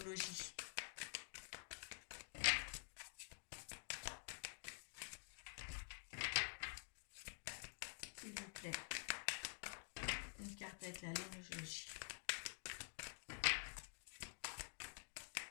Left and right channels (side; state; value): right; silent; digital silence